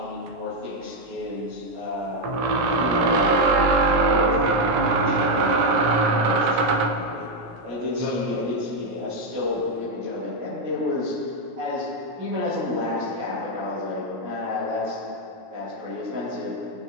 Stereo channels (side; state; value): left; late; 17 ms